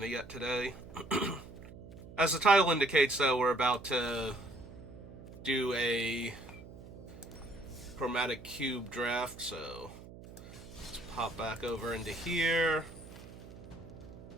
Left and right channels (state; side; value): noise; right; hum, 16 dB below the sound